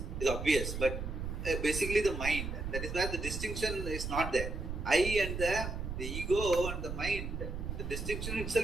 is obvious, but basically the mind. That is where the distinction is not there. I and the ego and the mind, the distinction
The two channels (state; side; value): noise; right; rumble, 5 dB below the sound